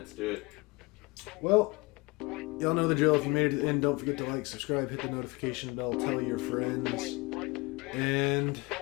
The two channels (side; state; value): right; quieter; 25.5 dB